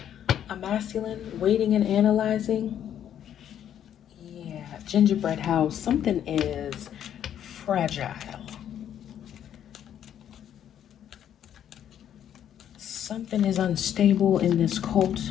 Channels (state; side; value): quieter; right; 10.0 dB